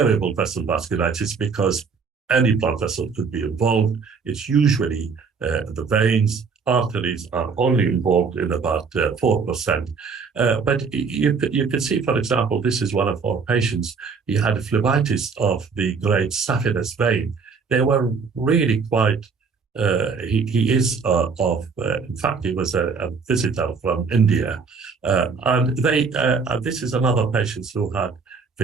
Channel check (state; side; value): quieter; left; 5.2 dB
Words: vessel vasculitis because any blood vessel could be involved. It's usually the veins, arteries are only involved in about 4%. But you can see, for example, this is one of our patients. He had a phlebitis of the great saphenous vein. They were really quite, he is in fact, he was a visitor from India. And this is another patient who had